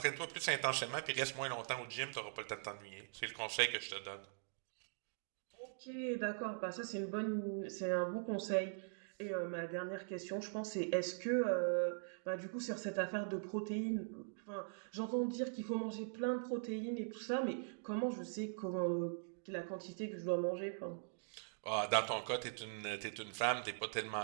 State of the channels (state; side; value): silent; left; digital silence